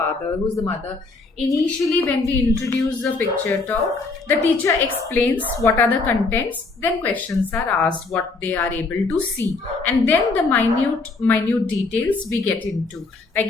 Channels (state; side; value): quieter; right; 3.8 dB